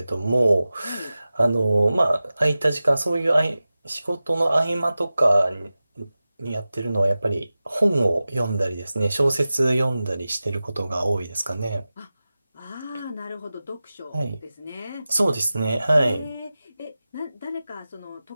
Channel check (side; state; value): both; inverted; correlation -0.96